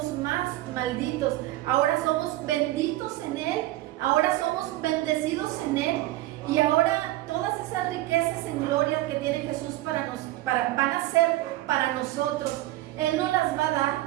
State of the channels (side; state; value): left; quieter; 16.4 dB